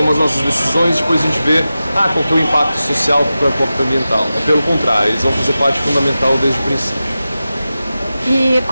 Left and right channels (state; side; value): inverted; both; correlation -0.94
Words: as nossas decisões e depois a gente vê qual que é o impacto social, qual é o impacto ambiental. Pelo contrário, eles vão fazer parte fundamental desde o princípio. E